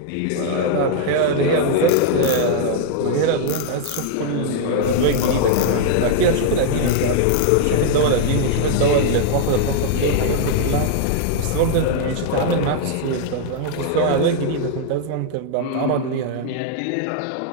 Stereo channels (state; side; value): different; both; correlation -0.01